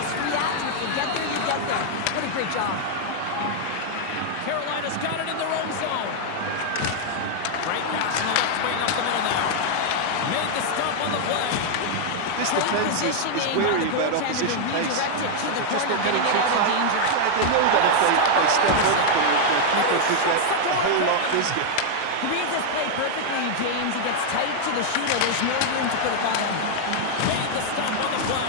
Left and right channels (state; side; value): different; both; correlation 0.00